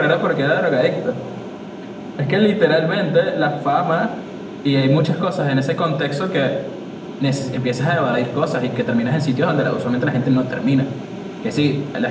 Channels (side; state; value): both; identical; correlation 1.00